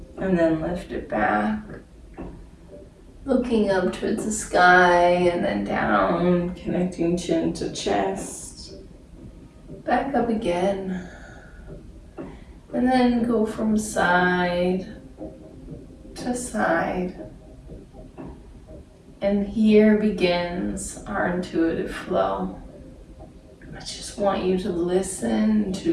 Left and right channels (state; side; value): identical; both; correlation 1.00